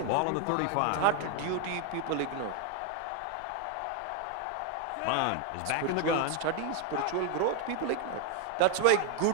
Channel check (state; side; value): different; both; correlation 0.01